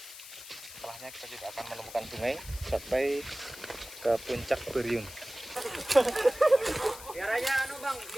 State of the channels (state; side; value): noise; left; hiss, 14 dB below the sound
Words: Setelahnya kita tidak akan menemukan sungai sampai ke puncak Beriun. Dia